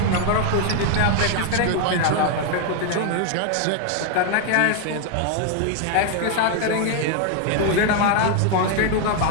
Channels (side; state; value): both; different; correlation 0.00